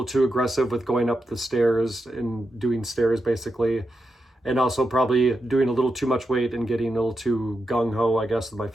too aggressive with going up the stairs and doing stairs basically. And also probably doing a little too much weight and getting a little too gung-ho, I guess, with my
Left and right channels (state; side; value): normal; both; correlation 0.87